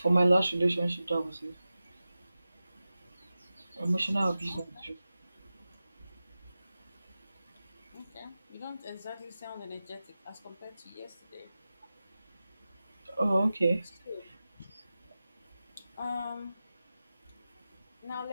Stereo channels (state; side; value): inverted; both; correlation -0.94